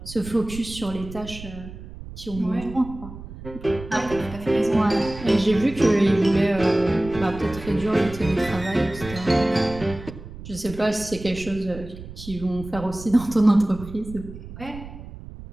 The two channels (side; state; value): right; noise; rumble, 13 dB below the sound